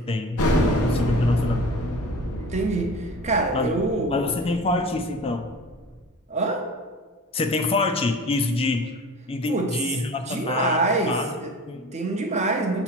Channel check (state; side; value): normal; both; correlation 0.38